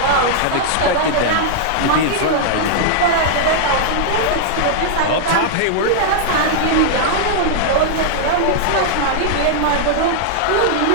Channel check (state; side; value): different; both; correlation -0.01